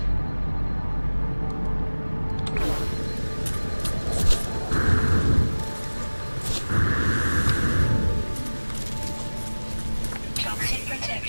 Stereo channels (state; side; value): inverted; both; correlation -1.00